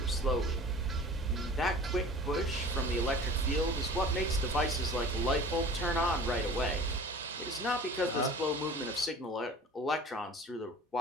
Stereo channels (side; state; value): both; normal; correlation 0.42